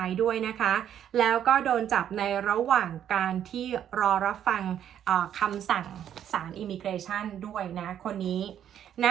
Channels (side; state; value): left; quieter; 10.0 dB